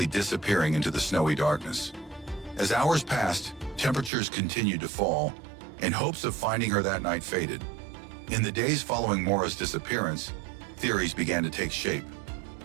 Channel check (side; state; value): left; drops out; at 4.1 s